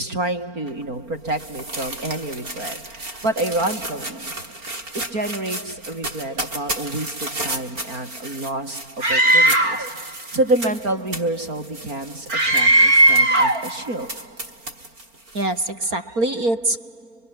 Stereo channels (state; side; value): late; left; 4.4 ms